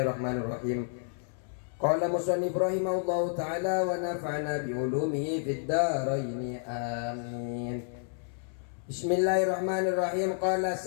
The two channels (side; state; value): right; silent; 57 dB below the other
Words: الرحمن الرحيم. قال مصنف رحمه الله تعالى ونفعنا بعلومه في الدارين آمين. بسم الله الرحمن الرحيم. قال